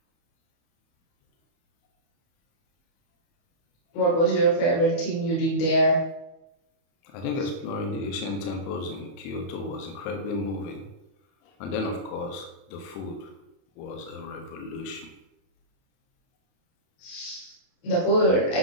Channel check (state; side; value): late; right; 31 ms